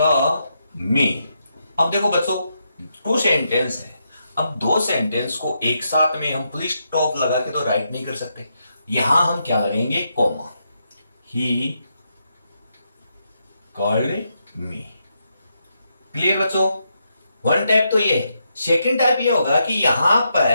मी। अब देखो बच्चों, टू सेंटेंस है। अब दो सेंटेंस को एक साथ में हम फुल स्टॉप लगा के तो राइट नहीं कर सकते, यहां हम क्या लगेंगे, comma. He called me. Clear बच्चों? वन टाइप तो ये। सेकंड टाइप ये होगा कि यहां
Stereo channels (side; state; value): both; inverted; correlation -0.81